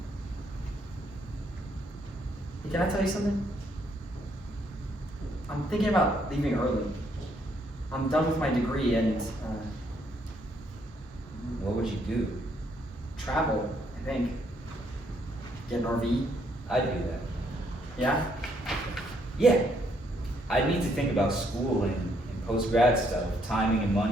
Hey, can I tell you something? I'm thinking about leaving early. I'm done with my degree and What would you do? travel, I think. Get an RV. I'd do that. Yeah? Yeah. I'd need to think about school and post-grad stuff, timing and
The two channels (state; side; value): normal; both; correlation 0.71